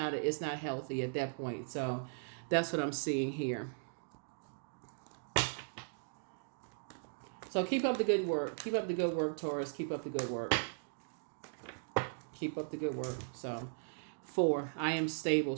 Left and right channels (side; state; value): left; silent; digital silence